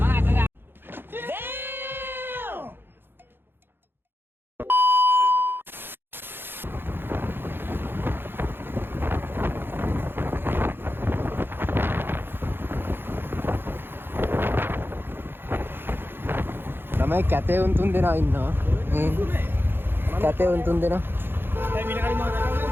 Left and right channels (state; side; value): late; left; 0.10 ms